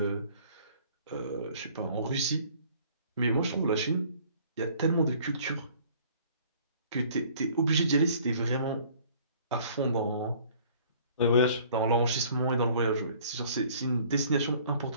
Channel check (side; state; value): both; inverted; correlation -0.54